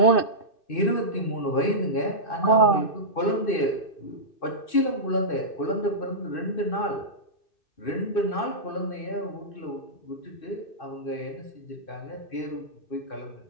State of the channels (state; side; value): late; right; 2.6 ms